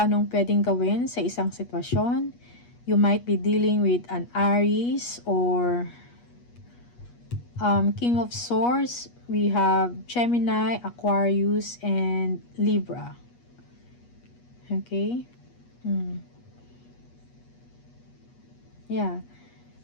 anong pwedeng gawin sa isang sitwasyon. You might be dealing with an Aries or King of Swords. We have Gemini, Aquarius, and Libra. Okay? Yeah.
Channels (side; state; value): right; late; 8.3 ms